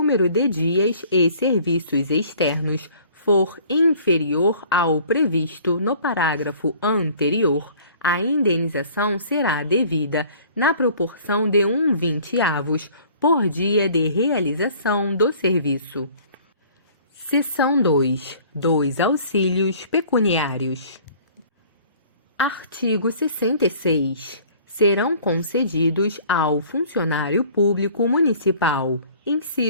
de dias e serviços externos for inferior ao previsto no parágrafo anterior, a indenização será devida na proporção de 1/20 por dia de realização do serviço. Seção 2. Dos auxílios pecuniários. Artigo 66. Serão concedidos ao funcionário público municipal:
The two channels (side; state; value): both; inverted; correlation -0.52